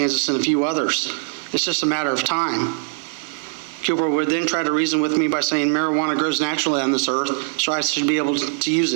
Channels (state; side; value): silent; left; digital silence